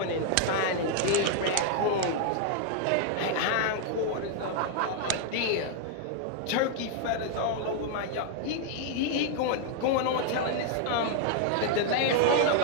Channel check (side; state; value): both; different; correlation 0.00